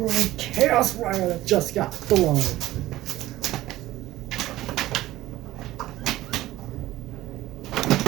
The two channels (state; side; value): quieter; left; 15.9 dB